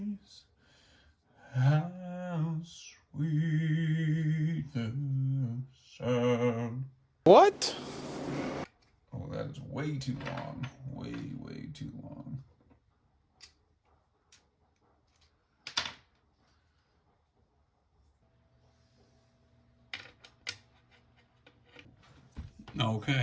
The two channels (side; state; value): both; identical; correlation 1.00